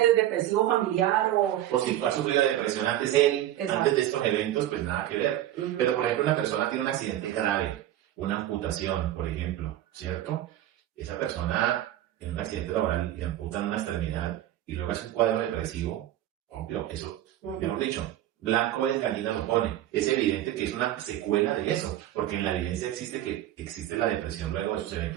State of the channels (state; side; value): quieter; left; 13.0 dB